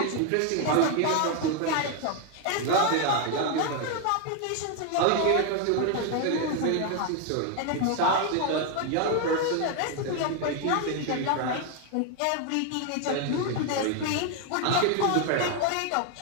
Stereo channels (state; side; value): different; both; correlation 0.01